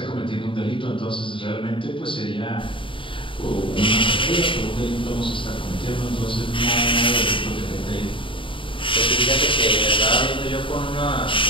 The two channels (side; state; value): right; late; 0.25 ms